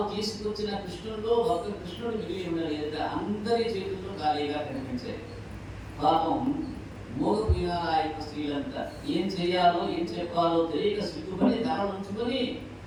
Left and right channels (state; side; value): identical; both; correlation 1.00